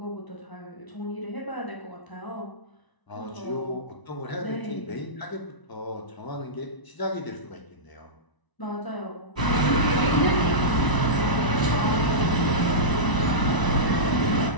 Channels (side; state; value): right; late; 1.0 ms